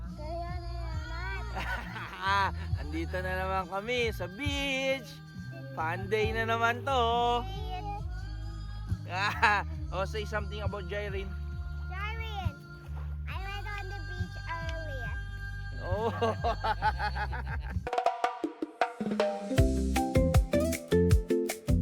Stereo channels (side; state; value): both; identical; correlation 1.00